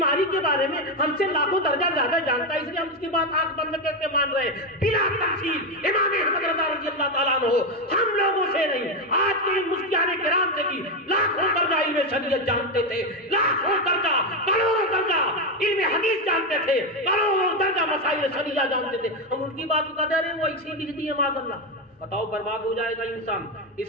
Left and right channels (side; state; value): both; normal; correlation 0.09